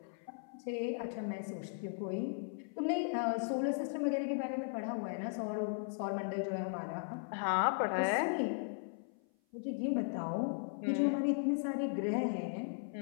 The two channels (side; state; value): right; silent; 53 dB below the other